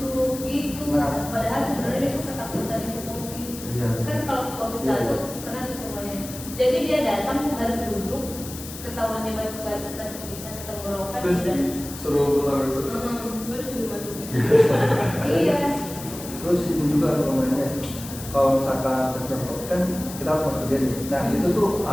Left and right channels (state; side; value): noise; left; hiss, 12 dB below the sound